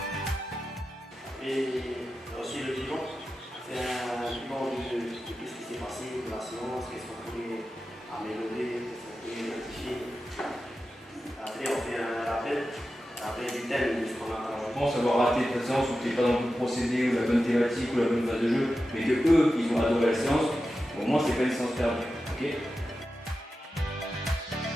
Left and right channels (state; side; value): normal; both; correlation 0.92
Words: Et aussi le bilan, c'est un bilan de qu'est-ce qui s'est passé de la séance, qu'est-ce qu'on pourrait améliorer, qu'est-ce qu'on pourrait rectifier. Après on fait un rappel du thème de ce qu'on a. Je pense avoir raté ta séance où tu n'es pas dans le bon procédé ou la bonne thématique ou la bonne phase de jeu, mais que eux, ils ont adoré la séance, au moins c'est pas une séance perdue. Okay.